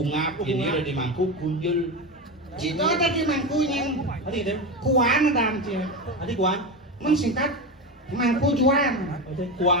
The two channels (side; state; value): both; normal; correlation 0.19